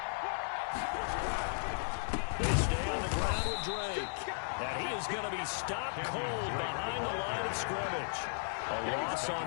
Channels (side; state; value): right; silent; 54 dB below the other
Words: They stay on the ground with Drake. And he is going to be stopped cold behind the line of scrimmage. A loss on